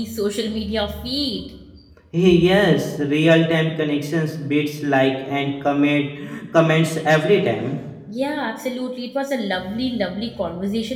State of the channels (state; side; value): identical; both; correlation 1.00